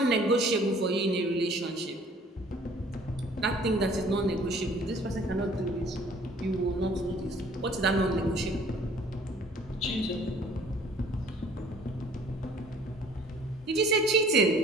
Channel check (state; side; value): normal; both; correlation 0.54